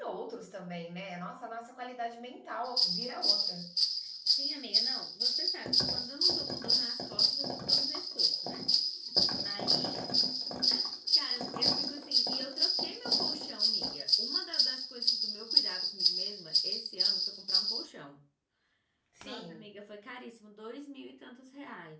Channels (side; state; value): both; identical; correlation 1.00